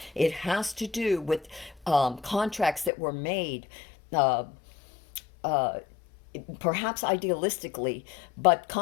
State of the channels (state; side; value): drops out; right; at 2.9 s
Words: It has to do with contracts that were made, uh, perhaps idealistically, but